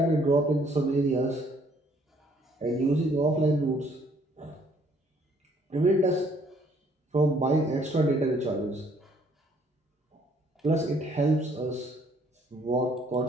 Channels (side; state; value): both; normal; correlation 0.63